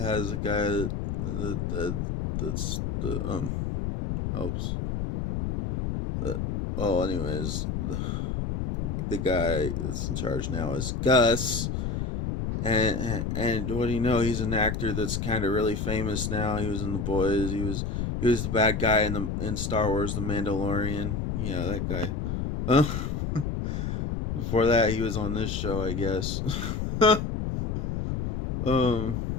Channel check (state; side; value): noise; left; rumble, 2 dB below the sound